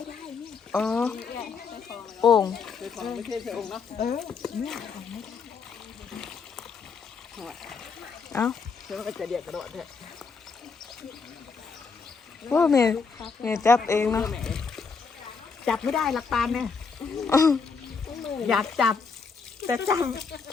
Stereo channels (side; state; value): right; quieter; 5.2 dB